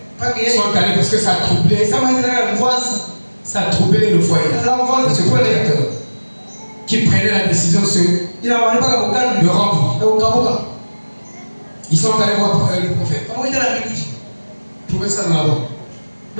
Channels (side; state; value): both; inverted; correlation -1.00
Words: sont allés parce que ça a troublé le foyer. Ce prédicateur qui prenait la décision de rompre. Ils sont allés voir le prophète. Trouvez ça dans la Bible.